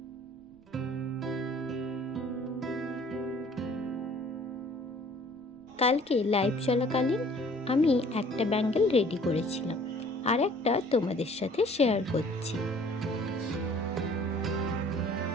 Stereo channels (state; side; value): noise; right; rumble, 29 dB below the sound